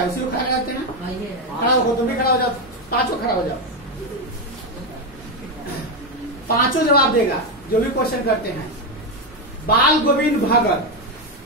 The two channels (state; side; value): normal; both; correlation 0.09